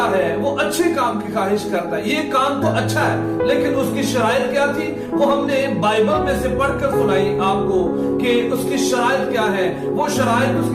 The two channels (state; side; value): identical; both; correlation 1.00